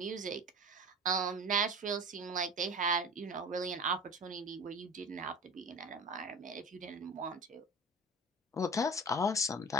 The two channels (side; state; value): both; normal; correlation 0.35